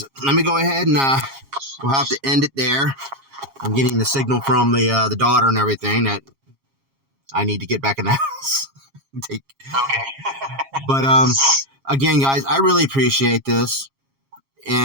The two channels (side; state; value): left; late; 7.3 ms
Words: let me go ahead and we'll have to end it there. I'm getting the signal from the daughter and everything that I need to get back in the house. Okay. But again, guys, I really appreciate this,